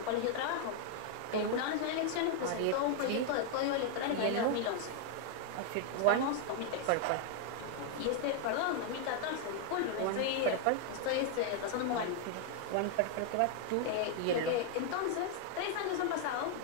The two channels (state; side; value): different; both; correlation 0.00